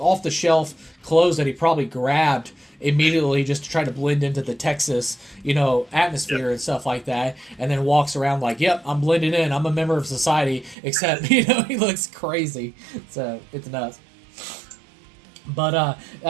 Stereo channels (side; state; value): left; drops out; at 10.8 s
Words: the shelf clothes that he probably grabbed immediately just to try to blend into the Texas, atmosphere and stuff like that, and then walks around like, yep, I'm blending in, I'm a member of society, except, he looks crazy. So, it's nuts. But,